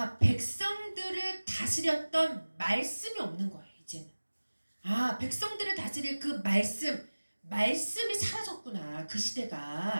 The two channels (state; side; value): inverted; both; correlation -1.00